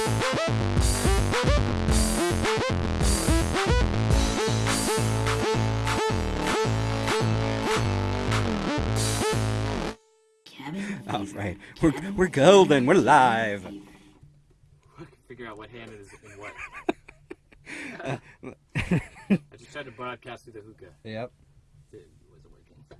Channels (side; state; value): both; identical; correlation 1.00